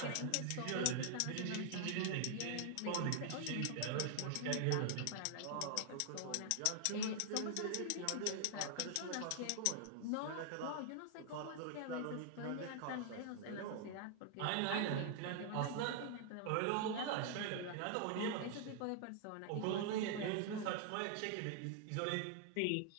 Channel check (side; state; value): both; different; correlation 0.00